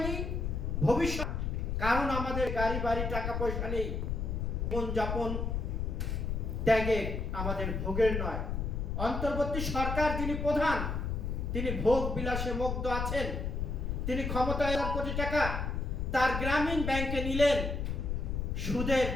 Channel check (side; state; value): left; noise; rumble, 2 dB below the sound